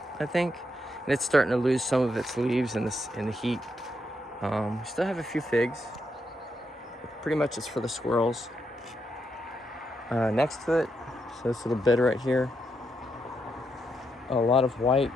I think. And it's starting to lose some of its leaves in the heat. We still have a few figs. Pretty much it's for the squirrels. Next to it, so this little bed right here, a lot of white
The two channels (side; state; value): both; normal; correlation 0.81